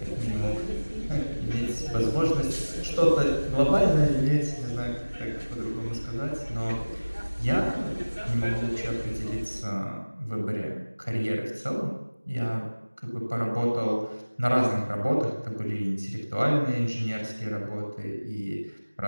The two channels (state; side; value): inverted; both; correlation -1.00